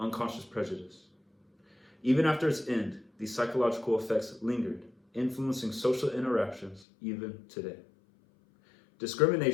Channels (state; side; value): drops out; right; at 6.9 s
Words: prejudice. Even after its end, these psychological effects lingered, influencing social interactions even today.